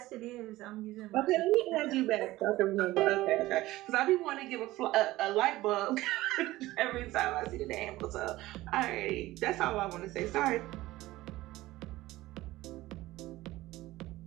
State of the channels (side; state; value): left; quieter; 17.4 dB